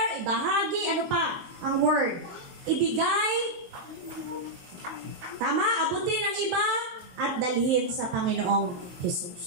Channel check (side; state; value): left; late; 23 ms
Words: ibahagi, ano pa? Ang word. Ibigay, tama, abutin ang iba, at dalhin sa Panginoong